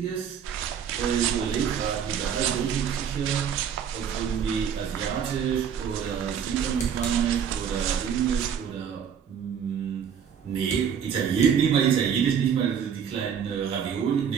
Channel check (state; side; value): quieter; left; 7.9 dB